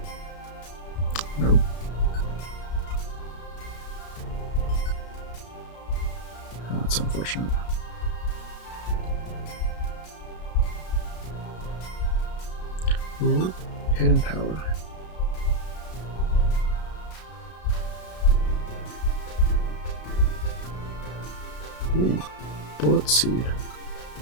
Nope. That's unfortunate. Ooh, hidden power. Ooh, bullet seed.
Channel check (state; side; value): late; right; 33 ms